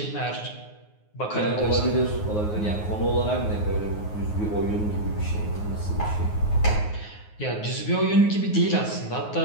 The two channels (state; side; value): late; right; 9.5 ms